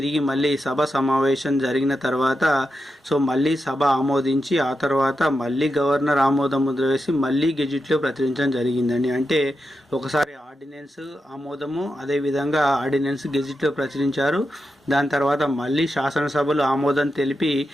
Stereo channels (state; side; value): normal; both; correlation 0.88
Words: మళ్ళీ సభ సమావేశం జరిగిన తర్వాత సో మళ్ళీ సభ ఆమోదించి ఆ తర్వాత మళ్ళీ గవర్నర్ ఆమోదం ముద్ర వేసి మళ్ళీ గెజిట్లో ప్రచురించడం జరిగిందండి. అంటే ఒకసారి ఆర్డినెన్స్ ఆమోదము, అదేవిధంగా ఆర్డినెన్స్ గెజిట్లో ప్రచురించారు. దాని తర్వాత మళ్ళీ శాసనసభలు ఆమోదం తెలిపి